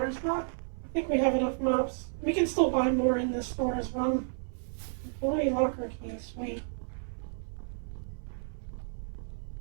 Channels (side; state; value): left; silent; 57 dB below the other